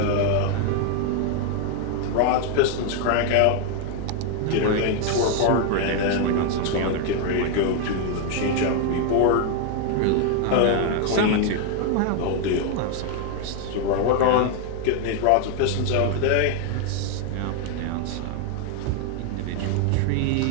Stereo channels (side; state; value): both; different; correlation 0.00